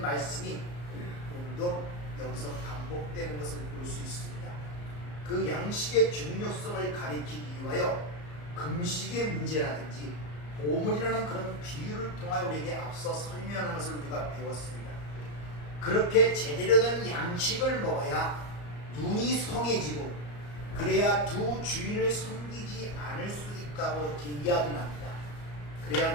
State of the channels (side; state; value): right; late; 34 ms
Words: 말씀이 오늘도 여기서 반복되는 것을 볼 수 있습니다. 그 양식의 중요성을 가리키기 위하여 금식의 문제라든지 오문이라는 그런 비유를 통하여 우리에게 앞서 설명하는 것을 우리가 배웠습니다. 그렇게 제대로 된 양식을 먹어야 눈이 성해지고 그래야 두 주인을 섬기지 않을 수 있다고 이렇게 이야기를 합니다. 그래야